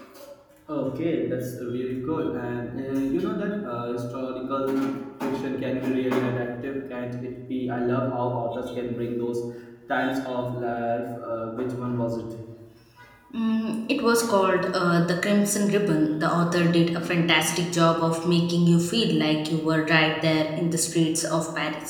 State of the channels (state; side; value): identical; both; correlation 1.00